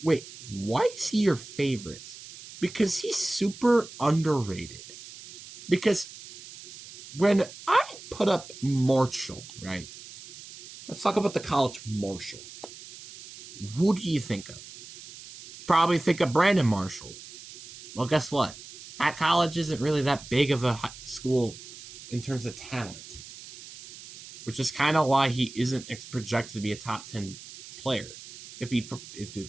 wait, why is he your favorite? Because he's super underrated. Because when I put up Marshall, right? Let's talk about the college Marshall. Who do you think of? You probably think of Brandon Marshall. Well, guess what? That college isn't really that big of a school in terms of talent, which is kind of why he isn't projected to be a top 10 player.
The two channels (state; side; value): noise; right; hiss, 16 dB below the sound